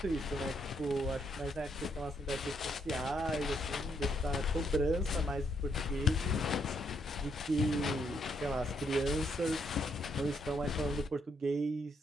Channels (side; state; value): both; normal; correlation 0.74